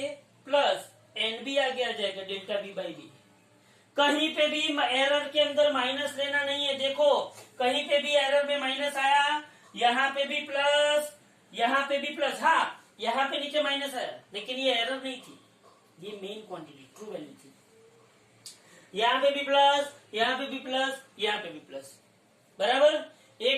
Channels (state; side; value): identical; both; correlation 1.00